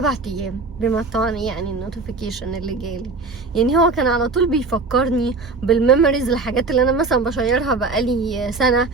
ايام، بما طبعا يعني النوتيفيكيشن اللي جالي، يعني هو كان على طول بيفكرني بالميموريز، الحاجات اللي انا مثلا بشيرها بقالي سنة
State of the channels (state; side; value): quieter; left; 3.9 dB